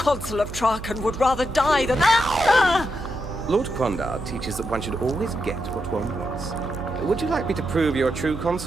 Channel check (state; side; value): noise; right; hum, 11 dB below the sound